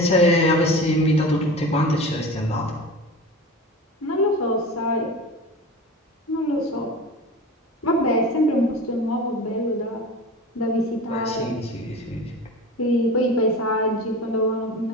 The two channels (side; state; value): both; normal; correlation 0.33